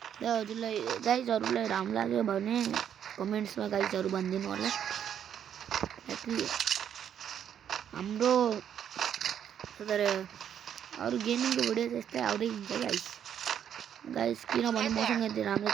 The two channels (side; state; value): left; quieter; 9.2 dB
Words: ल हजुरलाई गाइसहरुलाई राम्रो लाग्यो भने कमेन्ट्स में गाइसहरु भनिदिनु होला हाम्रो तर अरु गेमिङ को भिडियो त्यस्तै आउँदै हुन्छ गाइस किन भने मसँग यति राम्रो